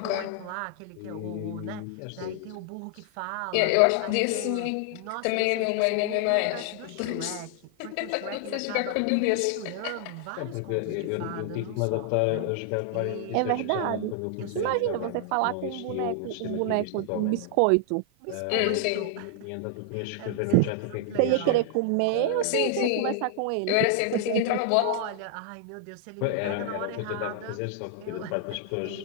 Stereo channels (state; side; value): different; both; correlation -0.01